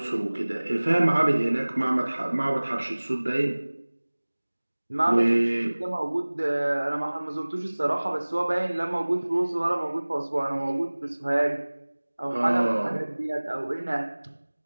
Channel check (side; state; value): both; inverted; correlation -1.00